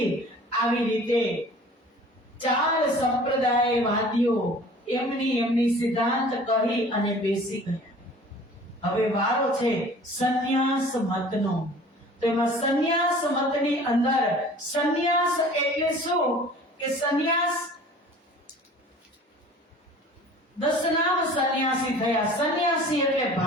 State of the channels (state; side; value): normal; both; correlation 0.46